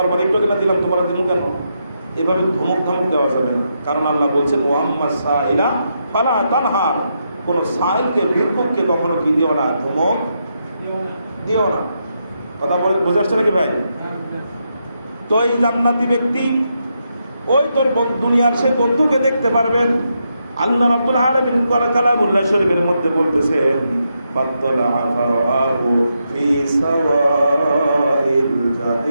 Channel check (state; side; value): inverted; both; correlation -0.82